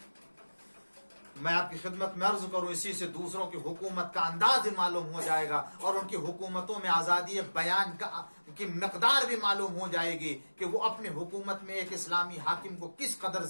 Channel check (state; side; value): inverted; both; correlation -1.00